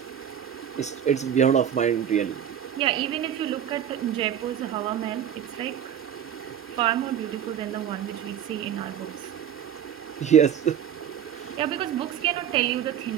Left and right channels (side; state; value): left; quieter; 9.3 dB